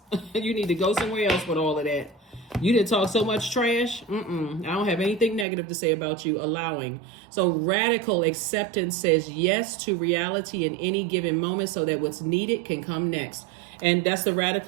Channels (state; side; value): drops out; left; at 5.5 s